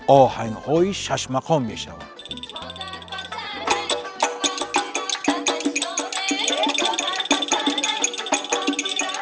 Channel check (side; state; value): both; identical; correlation 1.00